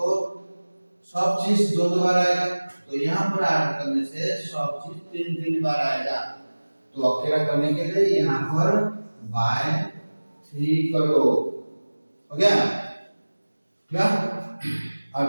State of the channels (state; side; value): inverted; both; correlation -1.00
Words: सब चीज 2-2 बार आएगा तो यहाँ पर ऐड करने से सब चीज 3-3 बार आएगा। तो अकेला करने के लिए यहाँ पर बाय 3 करो हो गया क्या।